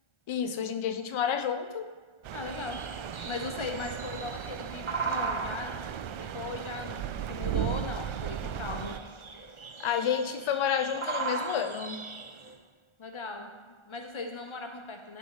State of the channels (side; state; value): right; late; 1.3 ms